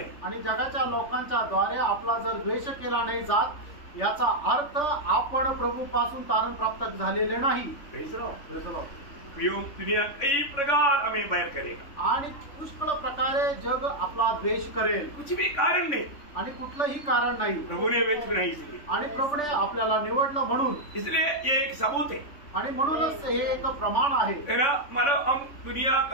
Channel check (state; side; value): late; right; 3.5 ms